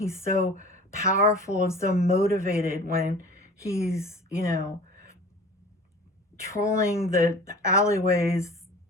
so powerful and so motivated when he's, trolling the alleyways,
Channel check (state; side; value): normal; both; correlation 0.42